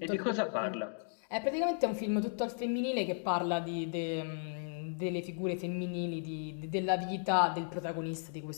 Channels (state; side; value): silent; right; digital silence